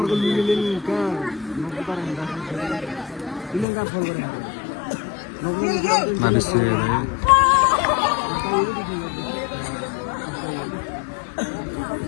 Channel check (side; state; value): right; drops out; at 3.7 s